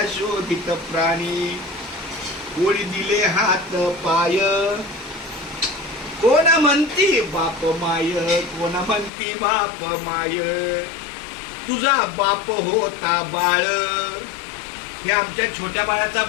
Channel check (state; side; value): drops out; right; at 9.1 s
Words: शोधित प्राणी. कोणी दिले हात पाय, कोणा म्हणती बाप माय, कोणा म्हणती बाप माय. तुझा बाप होता बाळ, हे आमच्या छोट्या बाळाचा